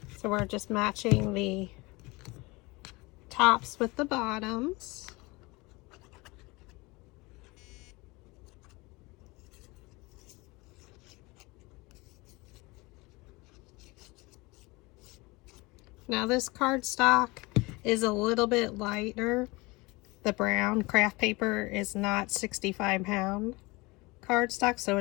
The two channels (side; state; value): right; quieter; 23.9 dB